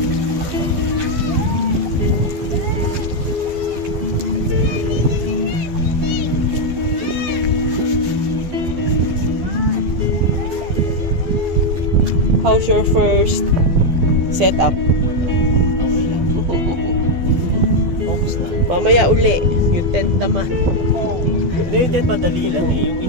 How's your first setup? Mamaya uli, yung tent naman. Yung tent madali lang eh. Yung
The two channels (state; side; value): late; left; 12 ms